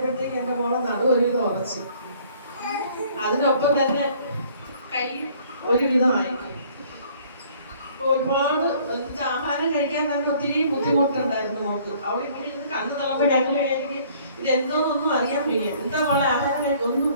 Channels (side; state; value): both; inverted; correlation -0.58